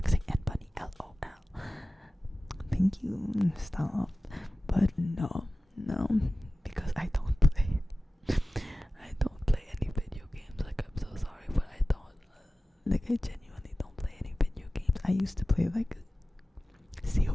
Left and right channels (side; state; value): both; normal; correlation 0.96